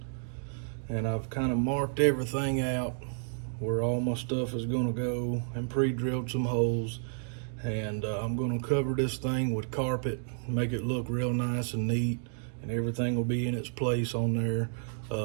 and I've kind of marked everything out where all my stuff is going to go and pre-drilled some holes. And I'm going to cover this thing with carpet, make it look real nice and neat, and everything will be in its place on there,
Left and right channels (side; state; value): left; silent; digital silence